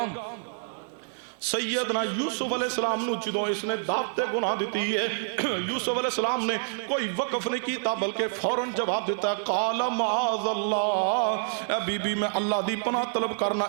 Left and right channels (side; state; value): left; silent; digital silence